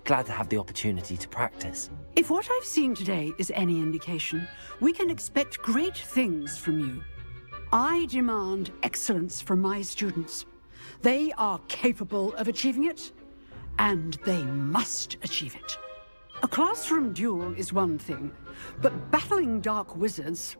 Glad to have the opportunity to practice. If what I've seen today is any indication, we can expect great things from you. I demand excellence from my students. They are capable of achieving it, and they must achieve it. A classroom duel is one thing, but battling dark wizards,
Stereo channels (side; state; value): both; inverted; correlation -1.00